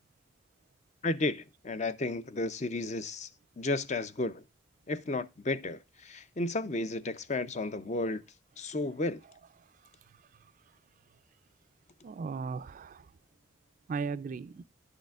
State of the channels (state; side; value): normal; both; correlation 0.35